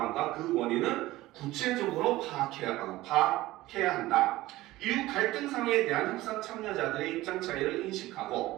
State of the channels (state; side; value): quieter; left; 17.5 dB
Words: 그 원인을 구체적으로 파악해야 한다. 이후 갈등 상황에 대한 협상 참여자들의 입장 차이를